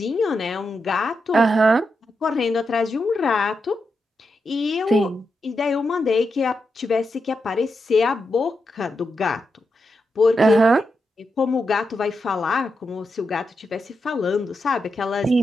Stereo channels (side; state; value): both; normal; correlation 0.86